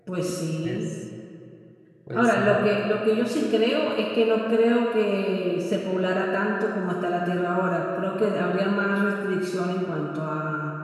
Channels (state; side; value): identical; both; correlation 1.00